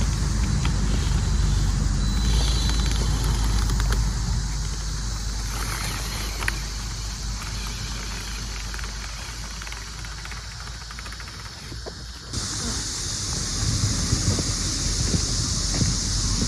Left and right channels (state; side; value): identical; both; correlation 1.00